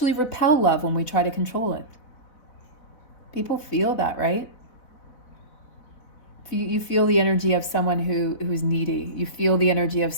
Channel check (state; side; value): late; right; 4.0 ms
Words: repel love when we try to control it. People feel that, right? You feel the energy of someone who's needy. You feel the energy of